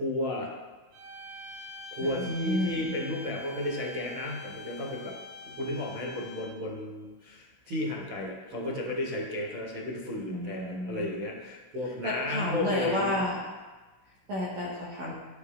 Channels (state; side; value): late; left; 16 ms